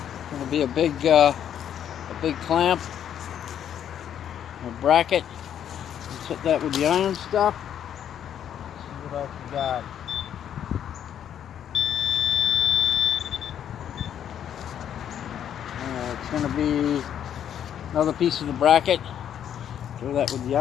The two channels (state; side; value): quieter; right; 9.6 dB